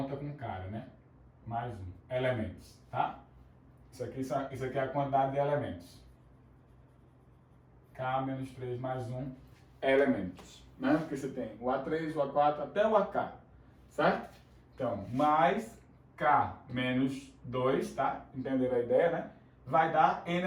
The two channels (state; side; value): identical; both; correlation 1.00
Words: com cara, né? Mais 1. Elementos, tá? Isso aqui é a quantidade de elementos. K menos 3 mais 1 elementos, né? Porque você tem o A3, o A4 até o AK, certo? Então, mais K menos 2, tá? Entenderam a ideia, né? Vai dar N